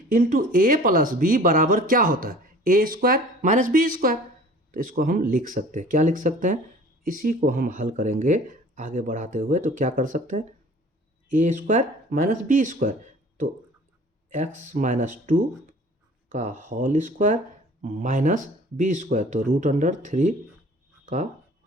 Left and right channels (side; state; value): both; normal; correlation 0.47